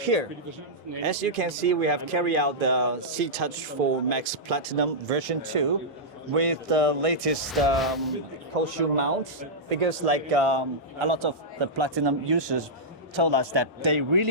as you can see, we have carried out the C-Touch 4 Max Platinum version 2 with the latest cold shoe mounts, because like a lot of the Platinum users told us that they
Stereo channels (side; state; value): both; normal; correlation -0.11